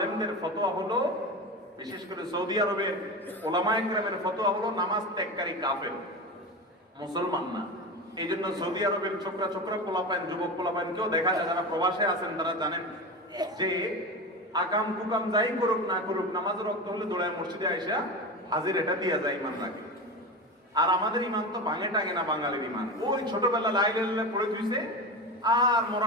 ফতোয়া হলো, বিশেষ করে সৌদি আরবের উলামায়ে কেরামের ফতোয়া হলো নামাজ ত্যাগকারী কাফের, মুসলমান না। এই জন্য সৌদি আরবের ছোকরা ছোকরা পোলাপাইন, যুবক পোলাপাইনকেও দেখা যায়, যারা প্রবাসে আছেন তারা জানেন যে আকাম কুকাম যাই করুক না করুক, নামাজের রক্ত হলে দৌড়ায় মসজিদে আইসা হাজির এটা দিয়া যায়, ইমান রাখে। আর আমাদের ইমান তো ভাঙে টাঙে না, বাঙালির ইমান ওই ছোটবেলা লাইলে পড়ে ধুইছে, আর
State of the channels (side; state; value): both; normal; correlation 0.24